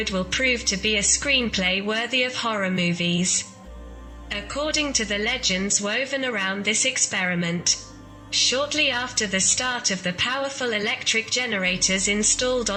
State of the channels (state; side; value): identical; both; correlation 1.00